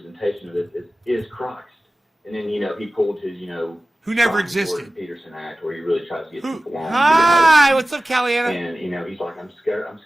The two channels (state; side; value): normal; both; correlation 0.96